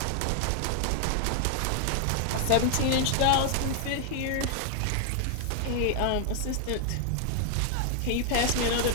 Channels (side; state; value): both; different; correlation 0.00